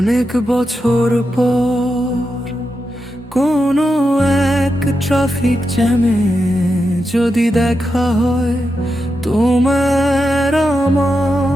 অনেক বছর পর কোনো এক ট্রাফিক জ্যামে যদি দেখা হয় তোমার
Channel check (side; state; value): both; normal; correlation 0.87